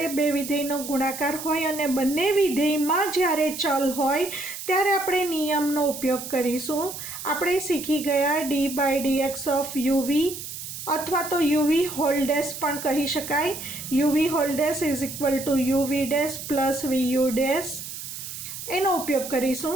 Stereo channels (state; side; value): noise; right; hiss, 9 dB below the sound